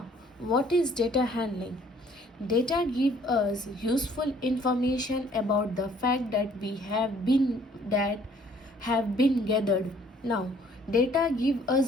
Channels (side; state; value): both; normal; correlation 0.59